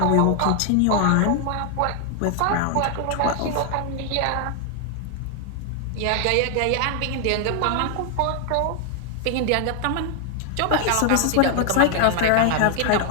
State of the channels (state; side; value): different; both; correlation 0.00